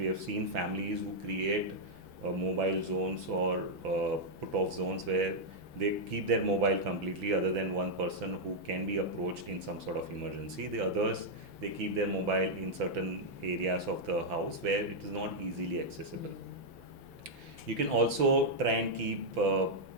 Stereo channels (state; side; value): late; left; 6.0 ms